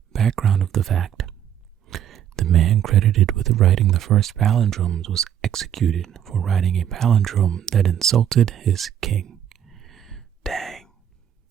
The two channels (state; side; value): quieter; left; 9.8 dB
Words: background of the fact. The man credited with writing the first palindromes was executed for writing a palindrome that insulted his king. Dang.